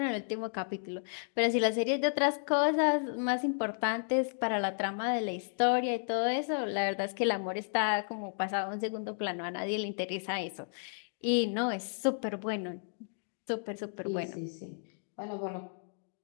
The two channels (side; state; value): right; silent; digital silence